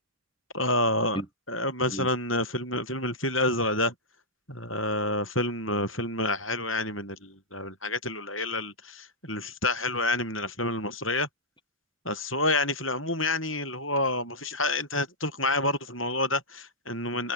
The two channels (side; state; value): both; normal; correlation -0.10